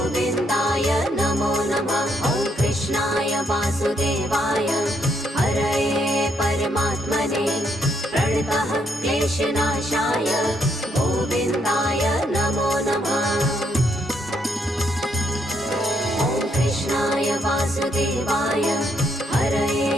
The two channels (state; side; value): normal; both; correlation 0.74